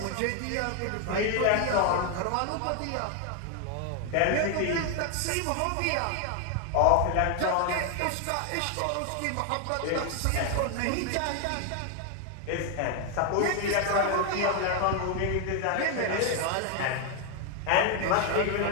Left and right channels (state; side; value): different; both; correlation 0.01